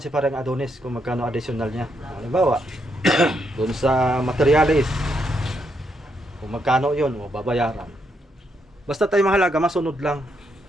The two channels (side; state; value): both; normal; correlation 0.78